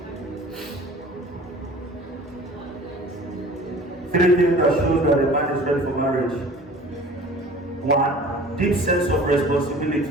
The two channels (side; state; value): both; normal; correlation 0.45